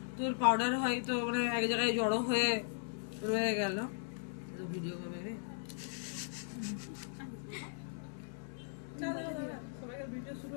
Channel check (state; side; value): silent; right; digital silence